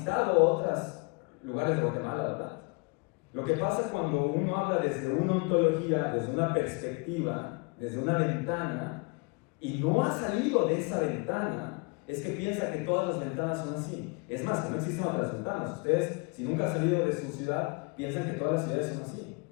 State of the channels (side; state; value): right; quieter; 30.6 dB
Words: otros lugares de Guatemala, ¿verdad? Lo que pasa cuando uno habla desde una ontología, desde una perspectiva, desde una ventana, y no ha salido de esa ventana, es que piensa que todas las ventanas son así. Es más, que no existen otras ventanas. Ustedes, si nunca han salido de su ciudad, piensan que todas las ciudades son así.